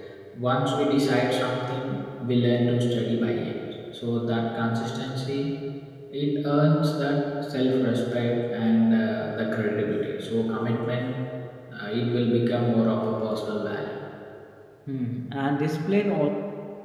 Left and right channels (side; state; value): both; identical; correlation 1.00